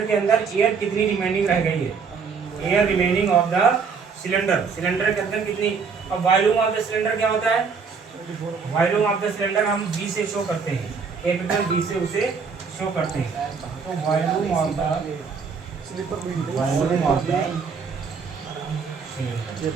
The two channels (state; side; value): quieter; left; 5.5 dB